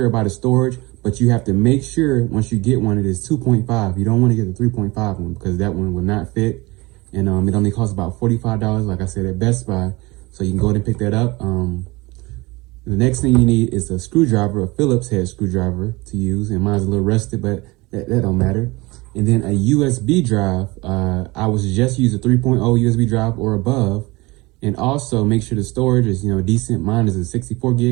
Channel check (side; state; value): left; quieter; 23.0 dB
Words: of storage. But you have to make sure once you get one, it is 2.5. You don't want to get the 3.5 one because that one will not fit. And it only costs about $45, like I said, at Best Buy. So you can go ahead and pick that up. The next thing you need is a screwdriver, a Phillips head screwdriver to use. And mine's a little rusted, but that don't matter. And then a USB drive. I would suggest use a 3.0 USB drive or above. And also make sure the storage is, decent. Mine is a 64